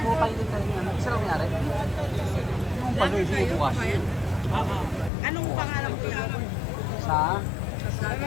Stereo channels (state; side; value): drops out; right; at 5.1 s